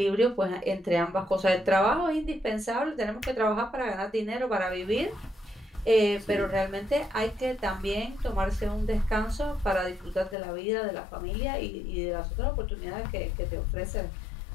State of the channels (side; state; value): right; drops out; at 10.4 s